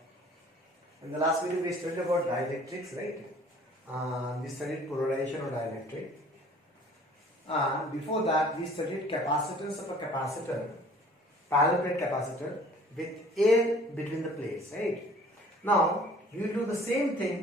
In the last video we studied about dielectrics, right? We studied polarization of dielectric. Before that we studied capacitance of a capacitor, parallel plate capacitor with air between the plates, right? Now we will do the same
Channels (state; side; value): normal; both; correlation 0.52